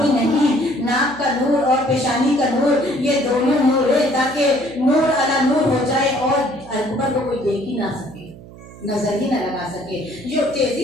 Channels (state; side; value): noise; right; hum, 18 dB below the sound